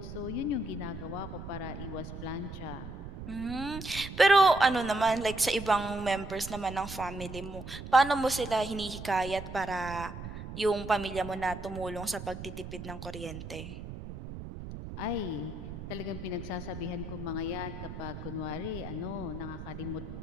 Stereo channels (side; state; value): right; noise; rumble, 10 dB below the sound